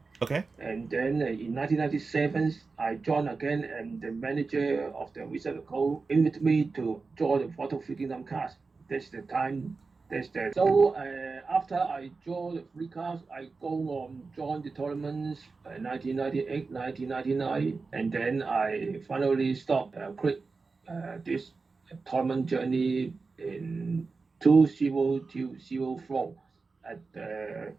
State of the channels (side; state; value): left; quieter; 4.2 dB